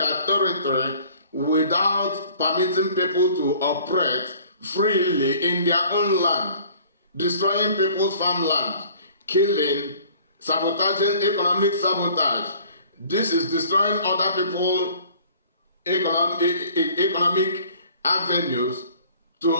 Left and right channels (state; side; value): inverted; both; correlation -0.52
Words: territory without permitting people to operate freely in their own land, destroying people's farmland, killing, sabotaging, economic sabotage. This is destroying other people's economic avenues